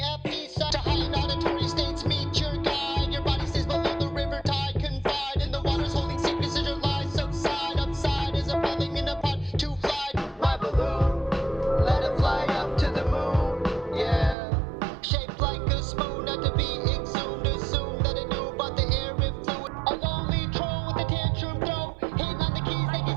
peace. To high auditory states, meet your guide. Your body stays below the river tide. Confide in the waters, holding secrets as your lies subside. Upside is a falling in a pot to fly. My balloon, let it fly up to the moon. Yeah, shaped like a spoon, not to be exhumed. Assume that it knew about the air it flew. A lonely troll with a tantrum throw. Hitting on the keys like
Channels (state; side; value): drops out; left; at 14.4 s